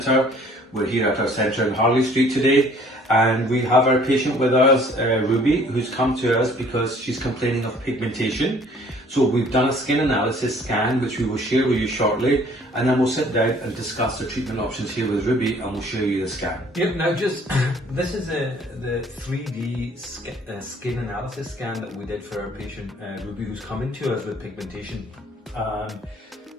We're here at our centre in Harley Street today and we have our patient with us, Ruby, who's come to us because she's complaining of pigmentation. So we've done a skin analysis scan which we will share with you shortly, and then we'll sit down and discuss the treatment options here with Ruby and we'll show you the scan. Yep, now this is the 3D skin analysis scan that we did for our patient Ruby, who's coming to us with pigmentation.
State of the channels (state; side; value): normal; both; correlation 0.56